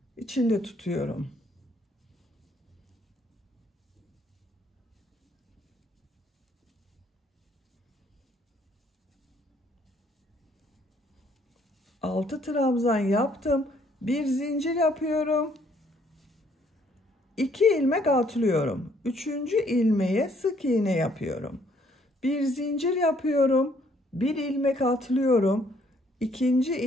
içinde tutuyorum. Altı trabzan yaptım. Bir zincir yapıyorum. 2 ilmek atlıyorum. 3. ilmeğe sık iğne yapıyorum. Bir zincir yapıyorum. Bir ilmek atlıyorum. 2.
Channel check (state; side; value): normal; both; correlation 0.65